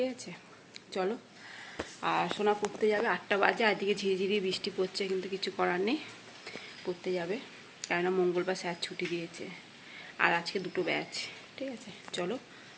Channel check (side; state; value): both; identical; correlation 1.00